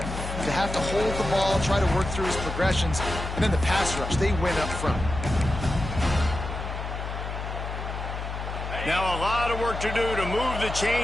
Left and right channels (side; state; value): left; noise; hum, 6 dB below the sound